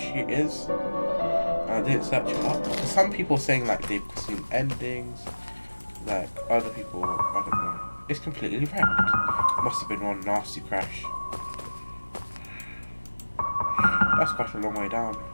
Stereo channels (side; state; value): both; inverted; correlation -1.00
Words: is. I didn't search it up. Some people saying like they've seen endings, like other people, I don't know. It's completely wrecked. Must have been one nasty crash. That's quite a long way down.